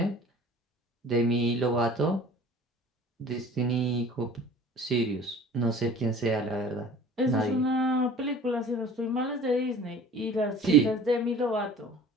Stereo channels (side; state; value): both; normal; correlation 0.45